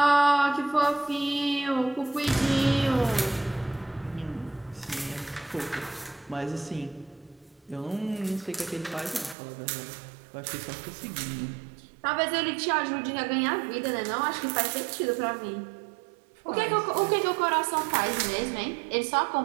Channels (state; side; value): drops out; left; at 9.3 s